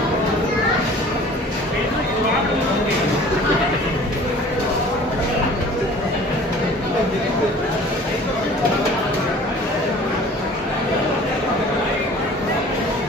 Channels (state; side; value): normal; both; correlation 0.47